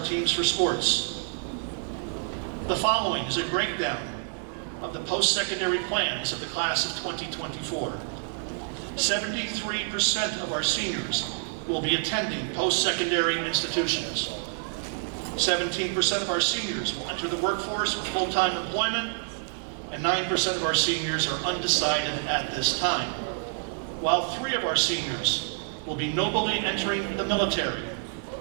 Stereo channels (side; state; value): left; silent; 60 dB below the other